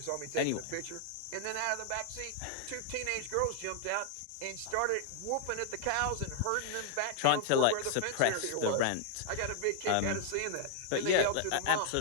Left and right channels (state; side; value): different; both; correlation -0.01